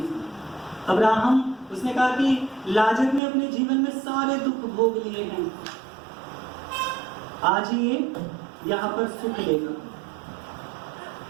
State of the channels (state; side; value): drops out; left; at 3.2 s